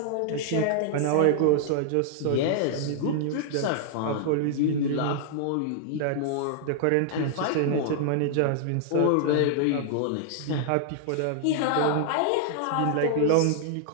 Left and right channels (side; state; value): both; different; correlation -0.01